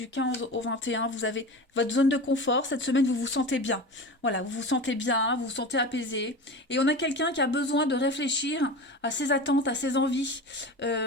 15 au 21, vous avez votre zone de confort. Cette semaine, vous vous sentez bien. Voilà, vous vous sentez bien, vous vous sentez apaisé. Et on a quelqu'un qui a besoin de réfléchir à ses attentes, à ses envies,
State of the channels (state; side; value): normal; both; correlation 0.30